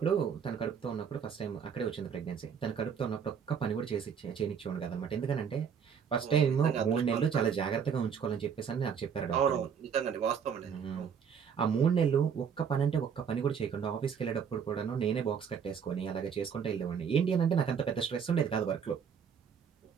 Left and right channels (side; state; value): left; quieter; 7.1 dB